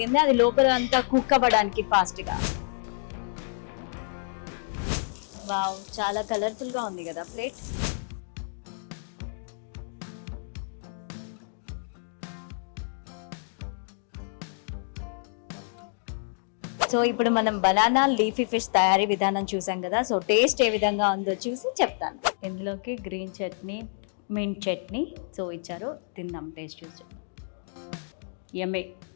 అది లోపల అంతా కుక్ అవ్వడానికి ఫాస్ట్గా. వావ్, చాలా కలర్ఫుల్గా ఉంది కదా ప్లేట్. సో ఇప్పుడు మనం బనానా లీఫీ ఫిష్ తయారీ విధానం చూసాం కదా. సో టేస్ట్ ఏ విధంగా ఉందో చూసి చెప్తాను. ఇందులోకి green chutney, mint chutney so ఇచ్చారు, తిందాం టేస్ట్ చూసి. యమ్మీ,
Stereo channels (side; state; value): right; silent; digital silence